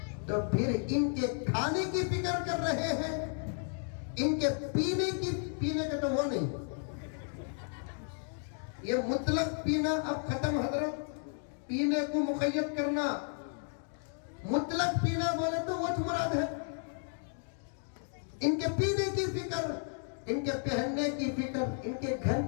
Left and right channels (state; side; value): silent; right; 55 dB below the other